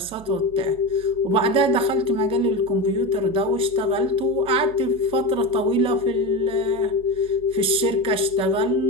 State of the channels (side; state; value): right; noise; hum, 20 dB below the sound